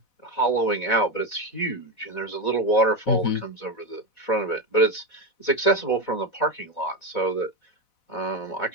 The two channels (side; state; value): right; late; 4.0 ms